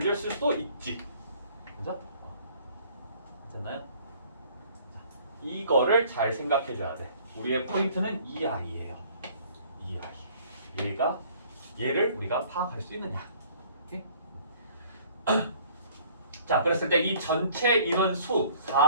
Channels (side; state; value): both; inverted; correlation -0.54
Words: 있을 수도 있지. 그죠? 됐나요? 이거를 잘 생각해 줘야 돼. 우리의 포인트는 이 아이예요. 이 아이. 얘를 우리가 파악할 수 있느냐. 오케이? 자, 그랬을 때 이 전체 인원수